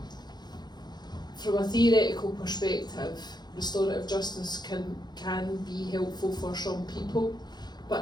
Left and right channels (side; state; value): right; late; 0.20 ms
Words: from a theoretical perspective, restorative justice can be helpful for some people, but